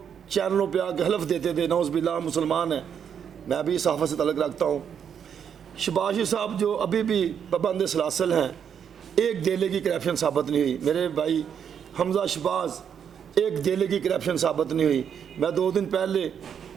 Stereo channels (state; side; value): quieter; left; 7.9 dB